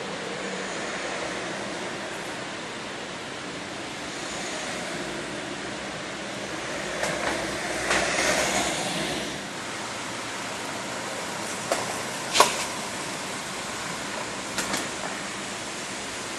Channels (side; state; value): both; identical; correlation 1.00